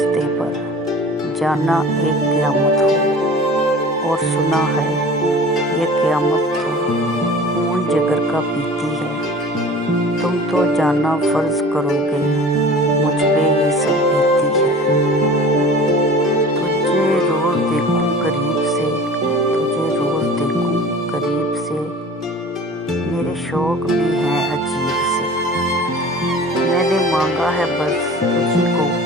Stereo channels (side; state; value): both; normal; correlation 0.41